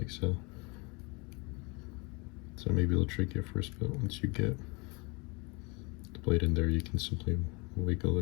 so. So maybe it'll trick you at first, but once you get the blade in there, you can simply wiggle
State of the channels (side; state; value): right; quieter; 29.1 dB